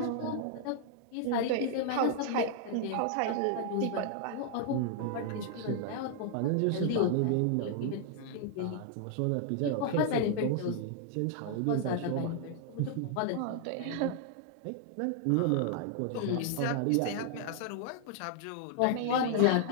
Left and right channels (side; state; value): both; different; correlation -0.01